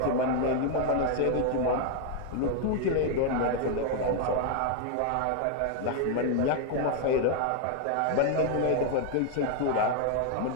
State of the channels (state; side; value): different; both; correlation 0.00